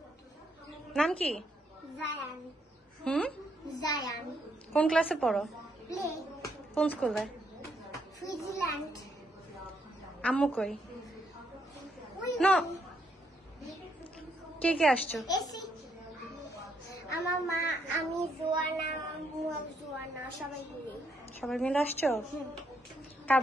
নাম কি? জায়ান। জায়ান। কোন ক্লাসে পড়ো? প্লে। কোন স্কুলে? সুইজারল্যান্ড। আম্মু কই? না, কে কে আসছো? আমার মা, আমি, জোয়ানা, জোয়ানা, সবাই মিলে আসছো? কার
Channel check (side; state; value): both; normal; correlation 0.75